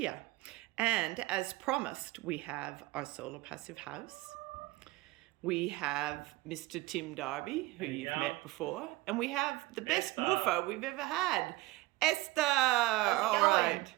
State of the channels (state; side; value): quieter; left; 19.7 dB